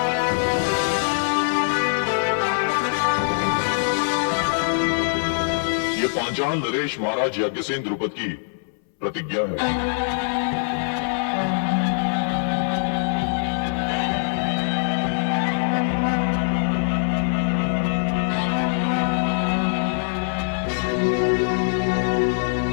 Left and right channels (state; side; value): silent; right; 61 dB below the other